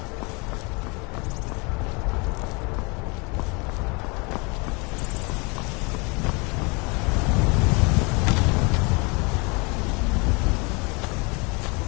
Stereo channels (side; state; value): right; quieter; 29.5 dB